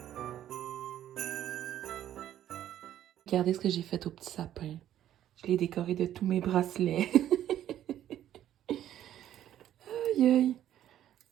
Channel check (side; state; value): left; quieter; 11.6 dB